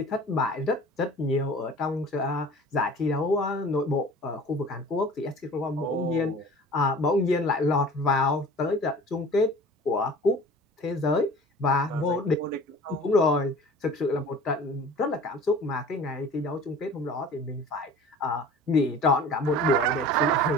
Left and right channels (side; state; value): both; normal; correlation 0.43